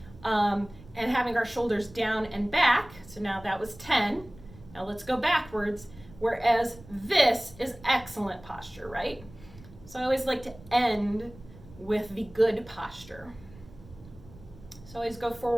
and having our shoulders down and back. So now that was 10. Now let's go backwards, whereas this is excellent posture, right? So I always like to end with the good posture. So always go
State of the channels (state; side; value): noise; right; rumble, 20 dB below the sound